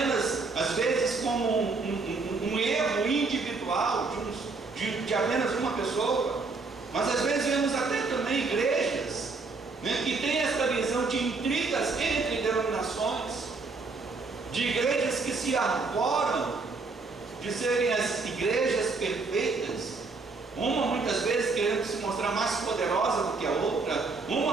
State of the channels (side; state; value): left; quieter; 4.0 dB